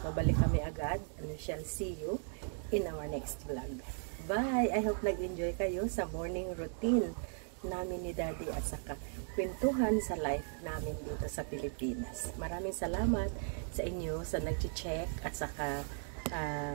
Babalik kami agad. And we shall see you in our next vlog. Bye! I hope nag-enjoy kayo sa morning routine namin ni Daddy at saka kwentuhan sa life namin dito sa Pilipinas. Maraming salamat sa inyo sa nag-check at saka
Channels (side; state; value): left; silent; 53 dB below the other